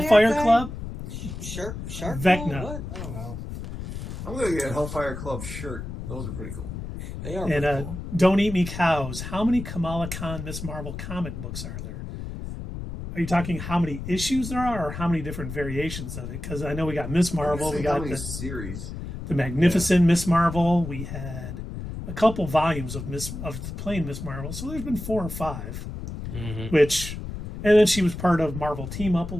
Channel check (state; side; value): noise; left; rumble, 8 dB below the sound